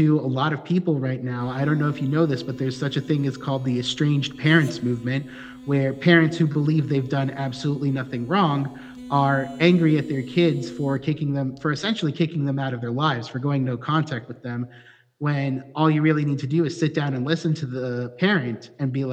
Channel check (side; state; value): both; identical; correlation 1.00